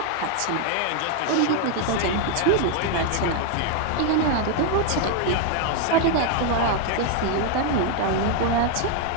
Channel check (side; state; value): both; different; correlation 0.01